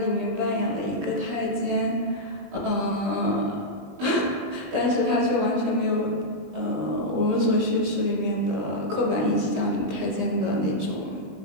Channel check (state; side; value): late; left; 20 ms